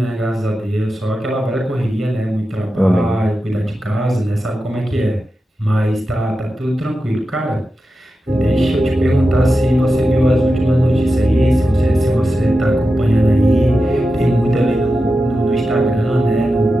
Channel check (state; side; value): normal; both; correlation 0.91